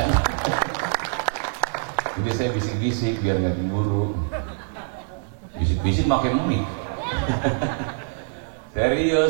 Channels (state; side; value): silent; left; digital silence